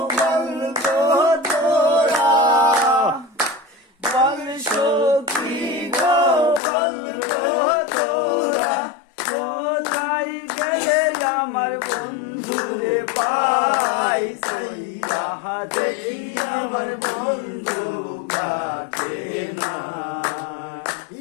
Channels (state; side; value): drops out; right; at 6.6 s